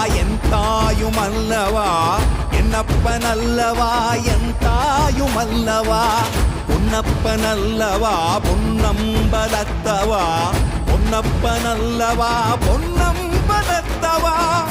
என் தாயும் அல்லவா என்னப்பன் அல்லவா என் தாயும் அல்லவா பொன்னப்பன் அல்லவா பொன்னம்பலத்தவா பொன்னப்பன் அல்லவா பொன்னம்பலத்தவா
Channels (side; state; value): both; identical; correlation 1.00